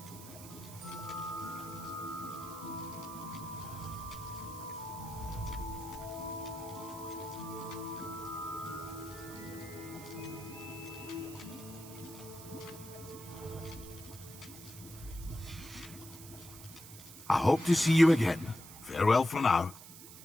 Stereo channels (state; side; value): noise; right; hiss, 15 dB below the sound